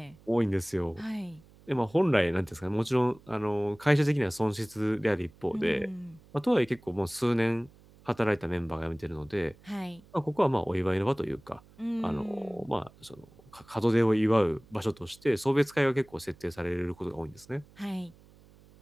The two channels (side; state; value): right; noise; hum, 26 dB below the sound